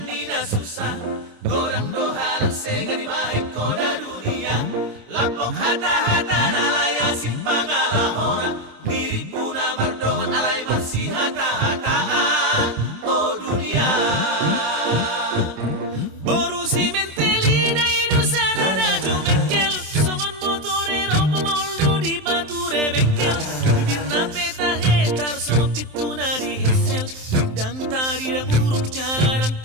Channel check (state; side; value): late; left; 27 ms